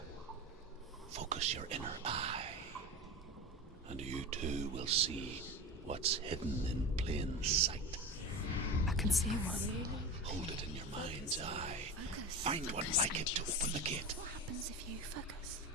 Focus your inner eye, and you too will see what's hidden in plain sight. I can see one. Hold it in your mind's eye. Focus. Find one Focus. like it to open the gate. What happens if you focus?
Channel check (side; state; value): both; normal; correlation 0.27